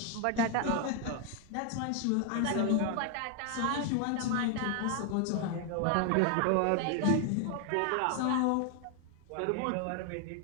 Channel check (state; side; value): different; both; correlation 0.00